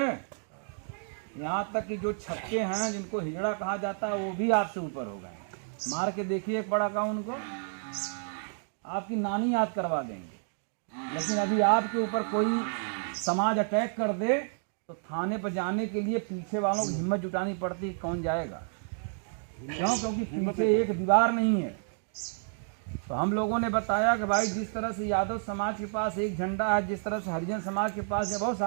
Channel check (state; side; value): silent; left; 58 dB below the other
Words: यहाँ तक कि जो छक्के हैं, जिनको हिजड़ा कहा जाता है, वो भी आपसे ऊपर हो गए। मार के देखिए एक बड़ा का उनको, आपकी नानी याद करवा देंगे। लेकिन अभी आपके ऊपर कोई समाज अटैक कर दे तो थाने पर जाने के लिए पीछे वालों की हिम्मत जुटानी पड़ती है। कौन जाएगा? क्यों? क्योंकि पीछे एक दीवार नहीं है। तो हम लोगों ने बताया कि भाई जिस तरह से यादव समाज के पास एक झंडा है, जिस तरह से हरिजन समाज के पास है, बहुत